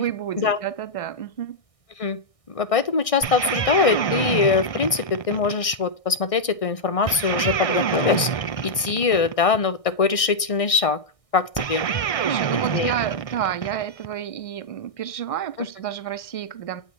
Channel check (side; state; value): right; late; 1.6 ms